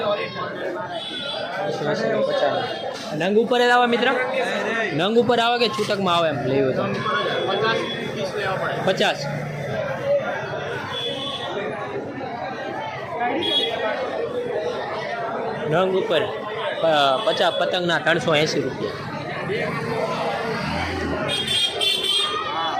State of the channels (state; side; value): identical; both; correlation 1.00